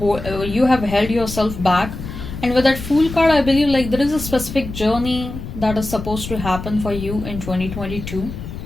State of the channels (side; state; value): left; noise; rumble, 9 dB below the sound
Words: yourself back. And with that Fool card, I believe like there is a specific journey that is supposed to happen for you in 2022.